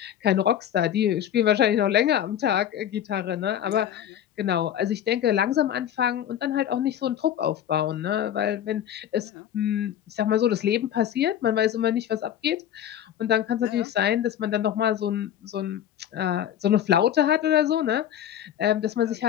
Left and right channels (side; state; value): right; quieter; 10.4 dB